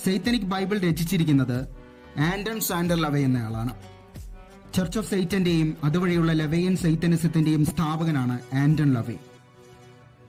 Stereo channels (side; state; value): both; identical; correlation 1.00